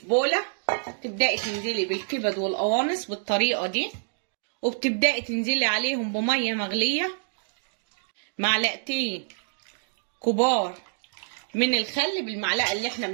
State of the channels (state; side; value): silent; left; digital silence